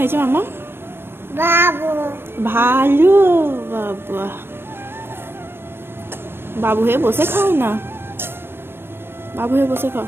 মামা? ভালো। বাবা, বাবু হয়ে বসে খাও না, বাবু হয়ে বসে খাও।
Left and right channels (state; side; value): late; left; 0.11 ms